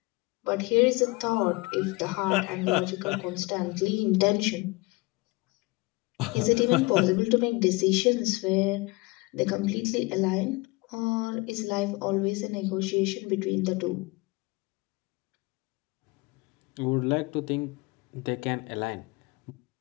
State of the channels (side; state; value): right; quieter; 24.3 dB